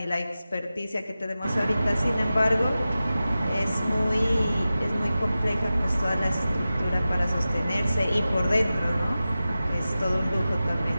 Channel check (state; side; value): inverted; both; correlation -0.94